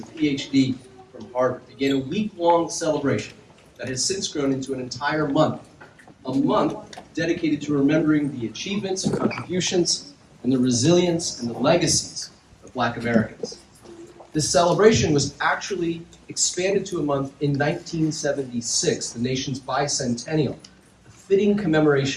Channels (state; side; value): identical; both; correlation 1.00